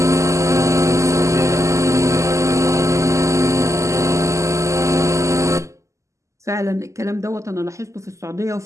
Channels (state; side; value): late; left; 0.15 ms